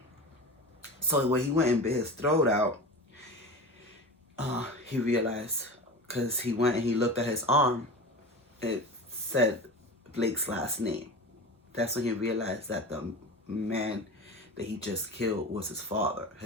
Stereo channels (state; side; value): normal; both; correlation 0.30